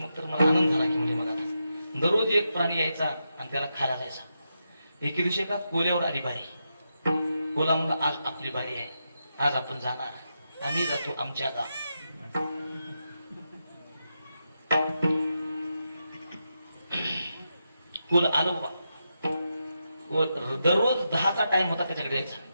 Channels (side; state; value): both; inverted; correlation -0.86